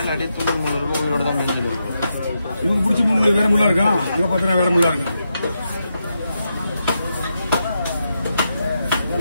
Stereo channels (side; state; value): both; inverted; correlation -0.85